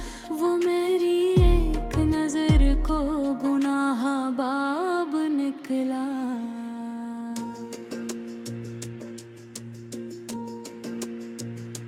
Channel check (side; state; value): both; identical; correlation 1.00